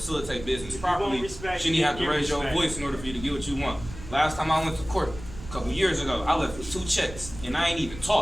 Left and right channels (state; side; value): noise; right; rumble, 13 dB below the sound